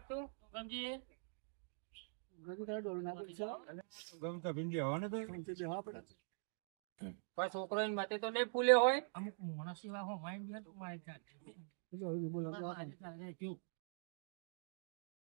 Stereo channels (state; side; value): silent; left; digital silence